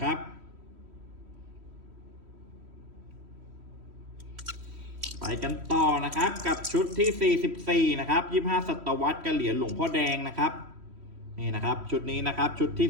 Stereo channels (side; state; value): left; late; 3.1 ms